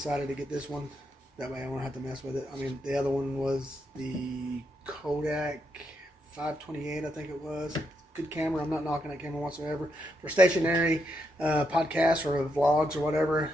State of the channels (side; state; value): both; normal; correlation 0.80